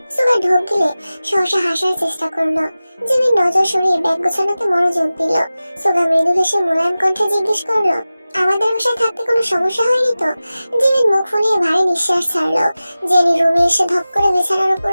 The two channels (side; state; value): both; inverted; correlation -0.96